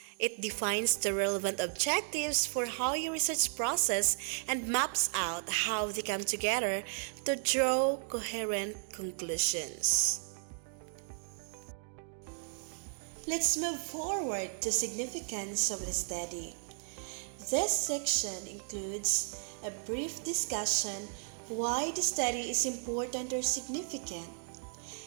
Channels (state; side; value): silent; left; 55 dB below the other